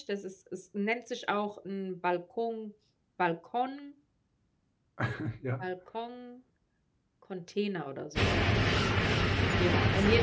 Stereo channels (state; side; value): identical; both; correlation 1.00